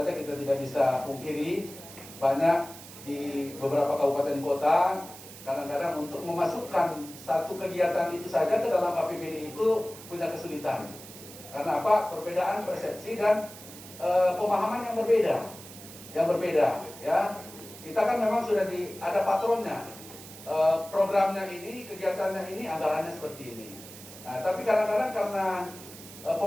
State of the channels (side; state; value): right; noise; hiss, 16 dB below the sound